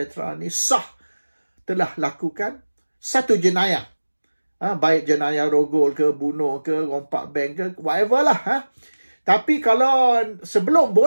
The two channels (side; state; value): both; inverted; correlation -1.00